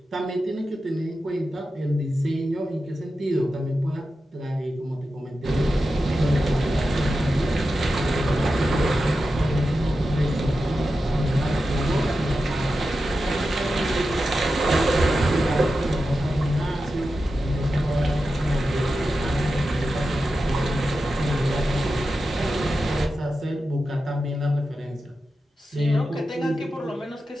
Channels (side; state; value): both; normal; correlation 0.91